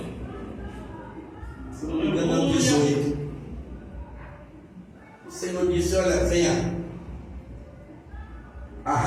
Se não me engano, é o 18. O Senhor disse: olha, venha,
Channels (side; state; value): both; identical; correlation 1.00